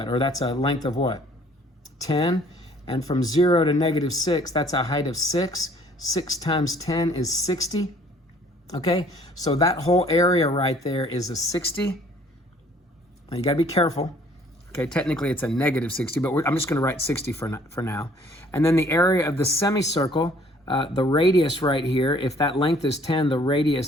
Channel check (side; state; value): both; normal; correlation 0.57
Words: Or that's a length of what? 10. And from 0 to -6, that's a height of 6. 6 times 10 is 60. Okay, so that whole area right there is a 60. Now you gotta be careful. Okay, technically it's a -60, but I'm just gonna write 60 for now. And then the area of the semicircle, the radius right here, if that length is 10, the